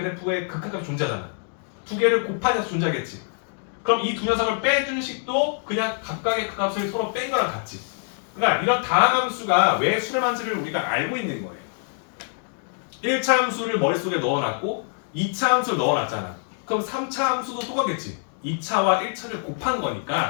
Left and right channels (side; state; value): right; silent; 58 dB below the other